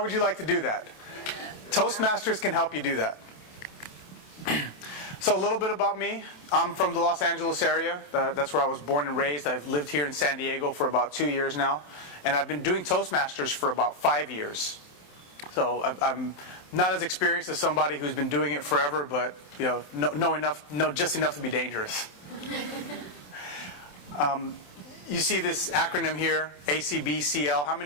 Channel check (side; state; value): right; late; 27 ms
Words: you like to do that? Toastmasters can help you do that. So a little bit about me. I'm from the Los Angeles area. That's where I was born and raised. I've lived here in San Diego for about 2 years now. And I've been doing Toastmasters for about 5 years. So I'm not as experienced as somebody who's been doing it forever, but know just enough to be dangerous. You see this acronym here, ACBCL. How